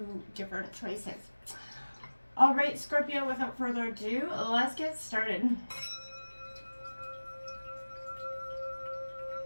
different choices. All right, Scorpio, without further ado, let's get started.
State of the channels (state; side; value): inverted; both; correlation -1.00